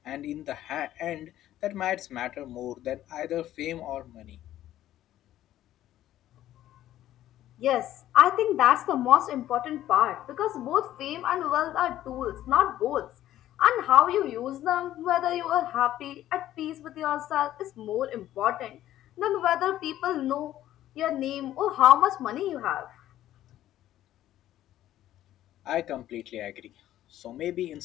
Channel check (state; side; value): quieter; right; 13.1 dB